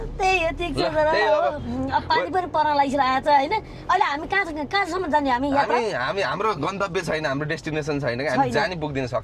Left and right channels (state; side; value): identical; both; correlation 1.00